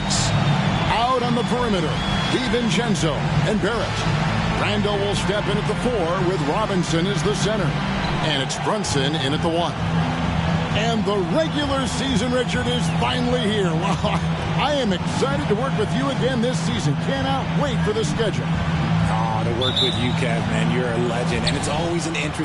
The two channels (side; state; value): both; identical; correlation 1.00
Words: out on the perimeter, DiVincenzo and Barrett. Randall will step in at the 4 with Robinson as the center. And it's Brunson in at the 1. And the regular season, Richard, is finally here. Wow, I am excited to work with you again this season. Cannot wait for the schedule. Oh, to work with you, Kev, man. You're a legend, and it's always an